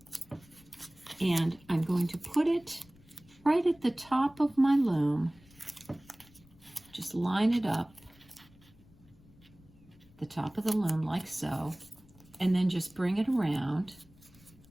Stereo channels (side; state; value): left; noise; rumble, 26 dB below the sound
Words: and I'm going to put it right at the top of my loom. Just line it up, the top of the loom like so, and then just bring it around.